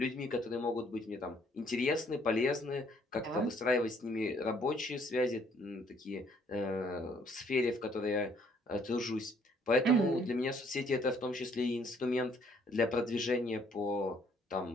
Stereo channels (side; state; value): both; normal; correlation 0.64